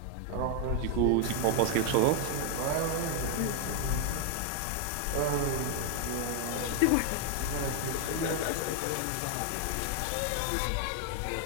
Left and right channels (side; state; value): both; different; correlation 0.01